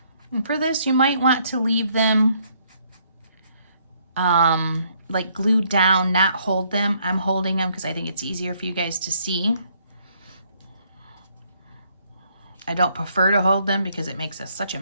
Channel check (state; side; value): inverted; both; correlation -0.68